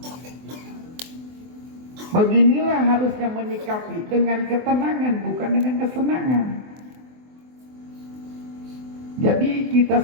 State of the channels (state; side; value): late; left; 24 ms